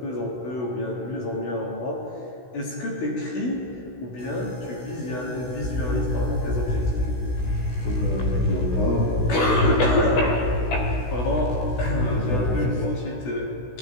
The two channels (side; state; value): right; late; 16 ms